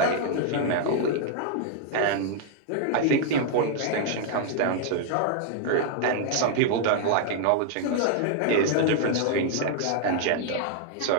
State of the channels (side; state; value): both; different; correlation 0.00